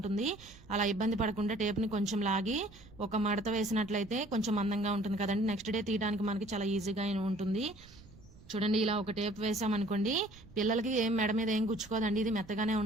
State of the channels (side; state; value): right; noise; rumble, 22 dB below the sound